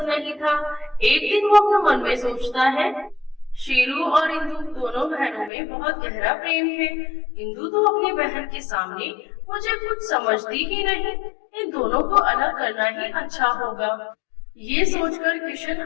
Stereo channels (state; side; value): drops out; right; at 5.5 s